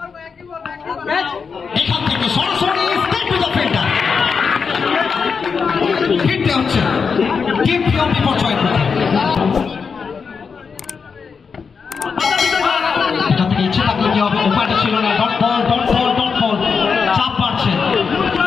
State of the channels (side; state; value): right; quieter; 5.6 dB